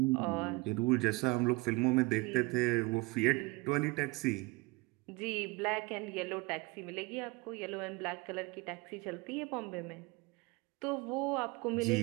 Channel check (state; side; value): quieter; left; 24.8 dB